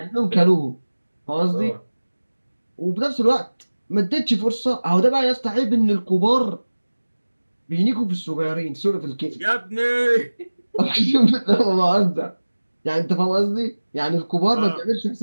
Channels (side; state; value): both; inverted; correlation -1.00